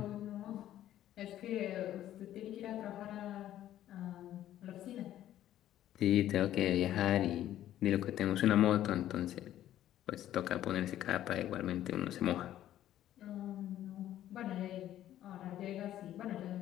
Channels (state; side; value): quieter; right; 12.5 dB